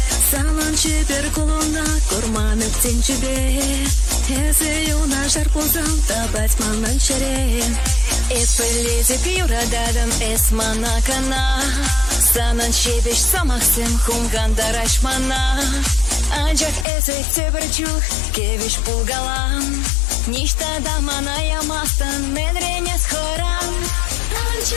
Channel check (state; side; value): drops out; right; at 16.9 s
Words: Салан чепер кулуна курманып тенчебе Эзе юна жар пулзам табать манан чере Эпелезик юрададым эс манакана Санан чебеш самахсем хумганда рашмана Анчак эзек тебірчух кевиш пулгалам Ништа да мана ямастан мен ренес хорам